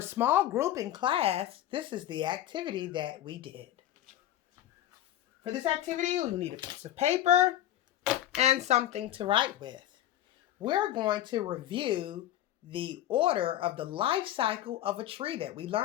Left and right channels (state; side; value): quieter; right; 12.7 dB